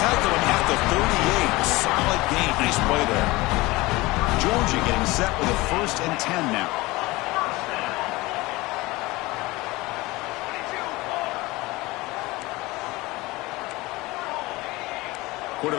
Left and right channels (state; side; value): quieter; right; 21.1 dB